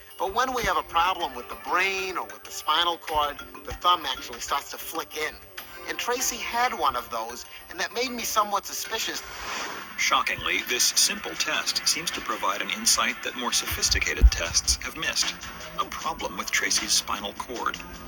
But when we have a problem with the brain or with the spinal cord, the thumb actually starts to flick in. And Tracy had one of those, and that made me somewhat suspicious. Shockingly, this simple test seems to provide an insight that more sophisticated tests have missed. A problem with Tracy's spinal cord.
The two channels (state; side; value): identical; both; correlation 1.00